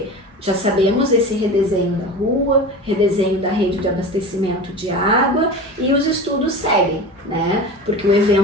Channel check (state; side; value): normal; both; correlation 0.31